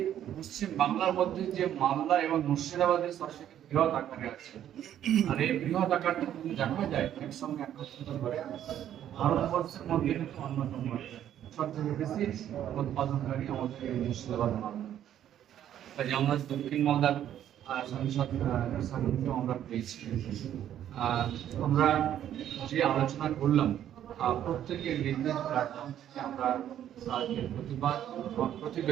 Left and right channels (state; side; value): quieter; left; 10.9 dB